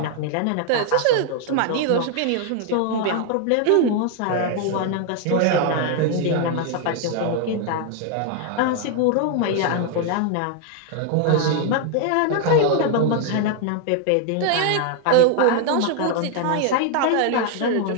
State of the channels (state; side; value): different; both; correlation 0.00